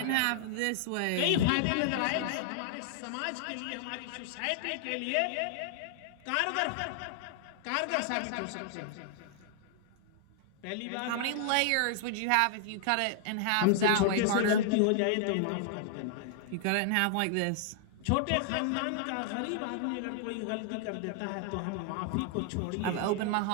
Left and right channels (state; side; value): different; both; correlation -0.01